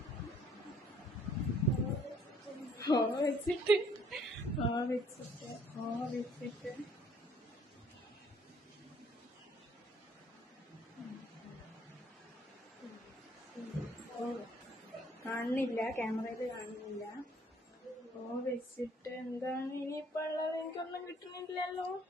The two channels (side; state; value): both; normal; correlation 0.62